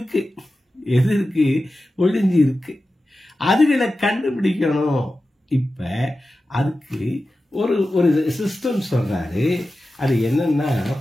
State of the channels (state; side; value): normal; both; correlation 0.94